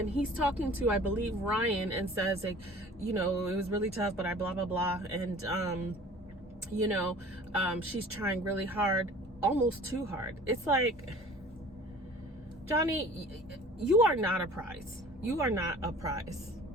he's talking to, I believe, Ryan, and says, like, you know, it was really tough, but I blah blah blah, and you know, she's trying really hard, almost too hard. It's like, Johnny, you are not a prize. You are not a prize.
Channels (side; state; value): both; normal; correlation 0.46